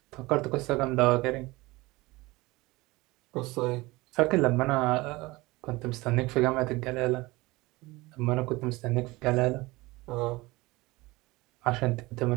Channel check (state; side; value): quieter; left; 21.5 dB